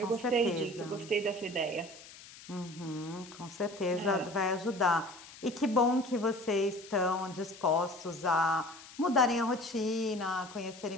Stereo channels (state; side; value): noise; left; hiss, 18 dB below the sound